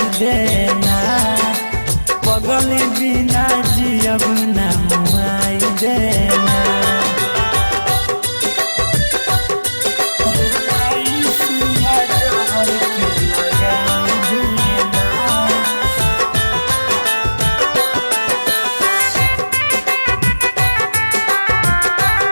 देना पगली बिना जियब ना मनाई देना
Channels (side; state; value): both; inverted; correlation -1.00